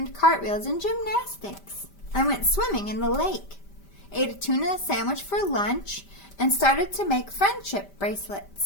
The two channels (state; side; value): late; right; 5.1 ms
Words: cartwheels and gymnastics. I went swimming in the lake, ate a tuna sandwich for lunch, and started to make friendship